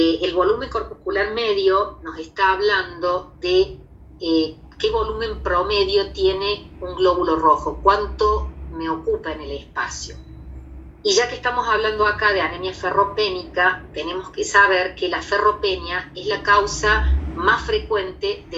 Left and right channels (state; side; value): identical; both; correlation 1.00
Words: volumen corpuscular medio nos está hablando de qué volumen promedio tiene un glóbulo rojo, cuánto me ocupa en el espacio. Y ya que estamos hablando acá de anemia ferropénica, tenemos que saber que la ferropenia es la causa más frecuente